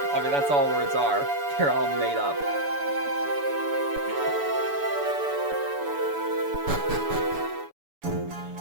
I mean, that's all words are. They're all made up.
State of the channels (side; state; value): left; late; 7.0 ms